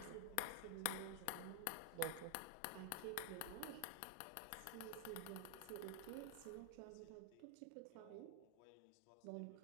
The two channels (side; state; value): both; different; correlation 0.00